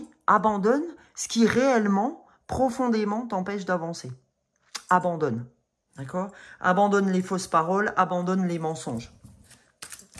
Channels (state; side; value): identical; both; correlation 1.00